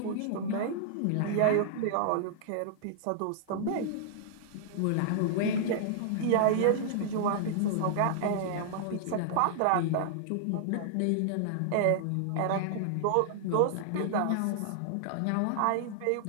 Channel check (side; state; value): both; different; correlation -0.01